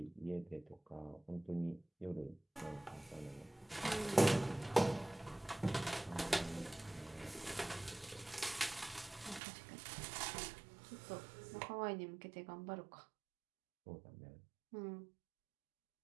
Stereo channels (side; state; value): left; drops out; at 9.4 s